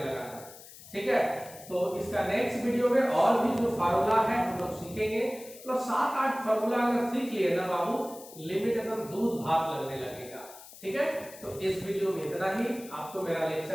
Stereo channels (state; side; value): noise; left; hiss, 18 dB below the sound